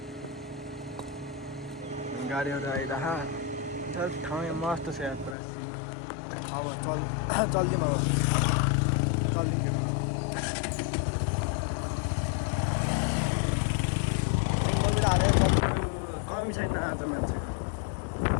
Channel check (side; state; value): right; drops out; at 5.4 s